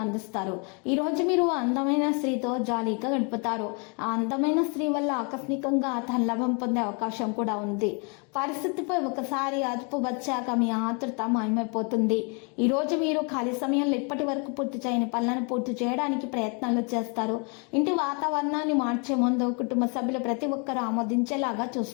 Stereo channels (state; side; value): quieter; right; 35.4 dB